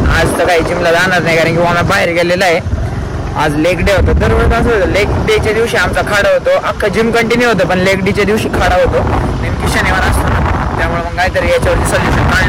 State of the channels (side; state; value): both; identical; correlation 1.00